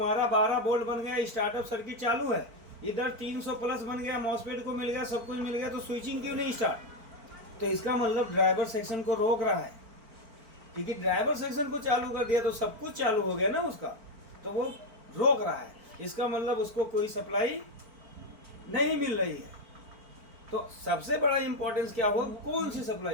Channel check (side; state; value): left; late; 4.4 ms